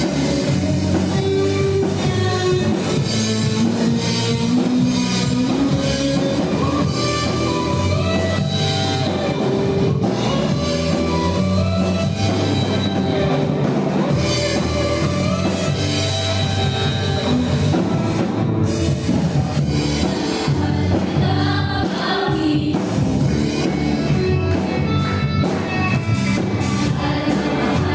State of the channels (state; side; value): identical; both; correlation 1.00